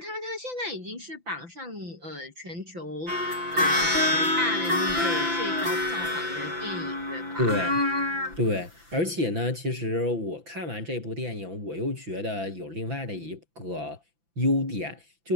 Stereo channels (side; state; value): left; late; 5.9 ms